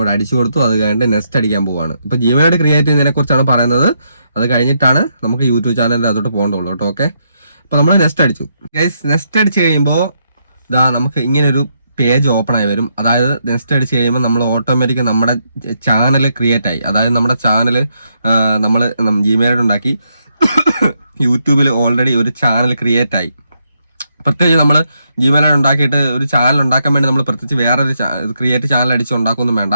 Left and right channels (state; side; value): inverted; both; correlation -0.78